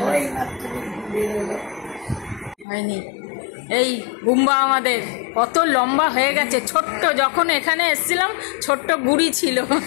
ওই মাত্র ঘুরে এলো। হয়নি। এই গুম্বা আমাদের কত লম্বা হয়ে গেছে, ছোট্ট যখন এখানে এসেছিলাম ছোট্ট গুড়ি ছিল,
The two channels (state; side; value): drops out; right; at 2.7 s